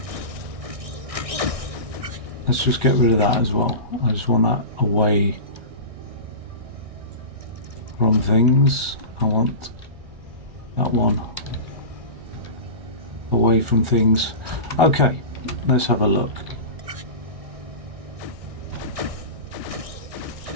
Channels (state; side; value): late; left; 1.6 ms